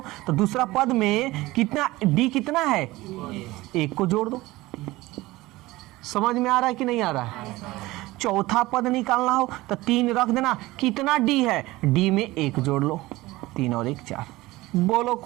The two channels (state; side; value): quieter; left; 19.1 dB